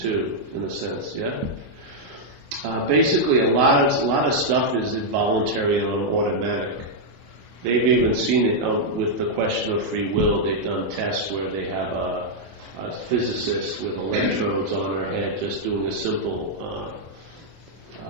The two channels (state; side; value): late; left; 24 ms